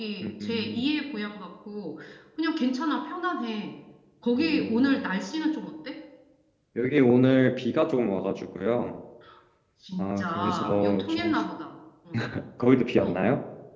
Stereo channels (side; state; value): both; identical; correlation 1.00